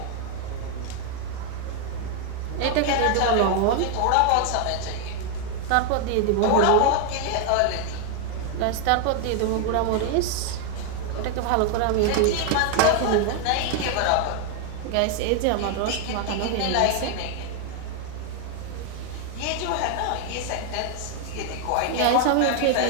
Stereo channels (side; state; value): both; different; correlation 0.00